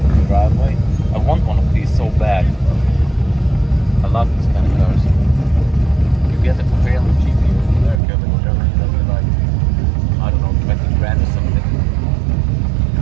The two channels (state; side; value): drops out; left; at 8.0 s